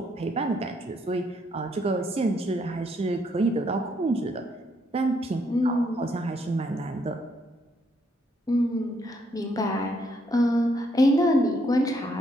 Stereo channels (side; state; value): both; normal; correlation 0.72